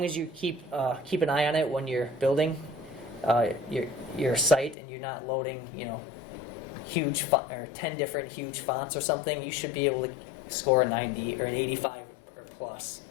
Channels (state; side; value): drops out; right; at 4.8 s